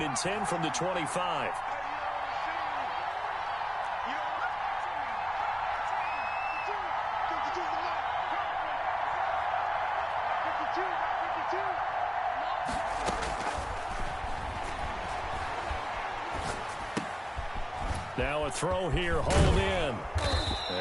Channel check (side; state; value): both; identical; correlation 1.00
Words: 10 from the 25. Now a throw here, hauled in.